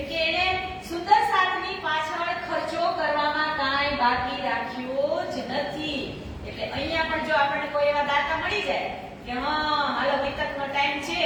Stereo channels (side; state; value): both; identical; correlation 1.00